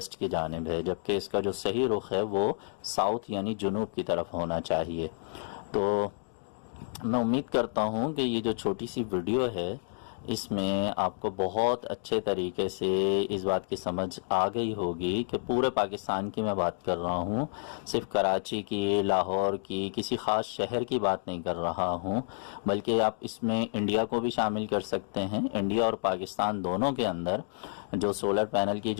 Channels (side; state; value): right; silent; digital silence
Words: کی جانب ہے، جبکہ اس کا جو صحیح رخ ہے وہ ساؤتھ یعنی جنوب کی طرف ہونا چاہیے۔ تو میں امید کرتا ہوں کہ یہ جو چھوٹی سی ویڈیو ہے اس میں آپ کو بہت اچھے طریقے سے اس بات کی سمجھ آ گئی ہوگی کہ پورے پاکستان کی میں بات کر رہا ہوں، صرف کراچی کی، لاہور کی، کسی خاص شہر کی بات نہیں کر رہا ہوں، بلکہ آپ اس میں انڈیا کو بھی شامل کر سکتے ہیں۔ انڈیا اور پاکستان دونوں کے اندر جو سولر پینل کی